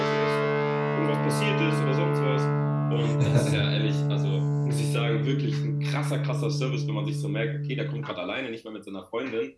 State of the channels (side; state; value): both; identical; correlation 1.00